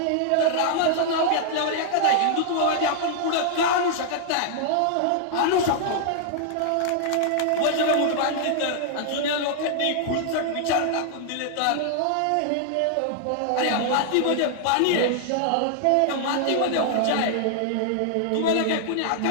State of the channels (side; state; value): both; different; correlation -0.01